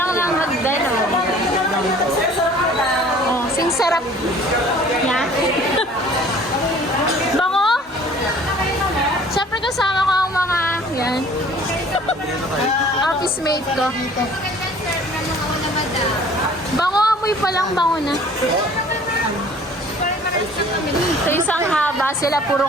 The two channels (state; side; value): normal; both; correlation 0.51